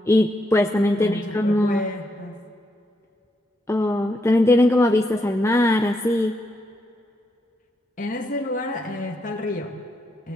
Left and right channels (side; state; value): both; normal; correlation 0.80